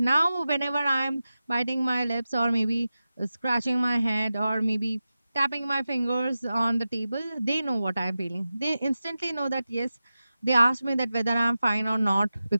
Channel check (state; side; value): inverted; both; correlation -0.94